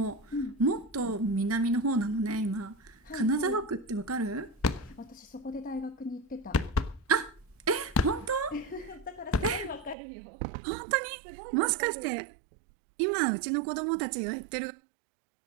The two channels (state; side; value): drops out; left; at 10.0 s